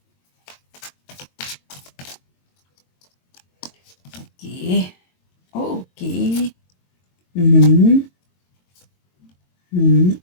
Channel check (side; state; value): right; late; 22 ms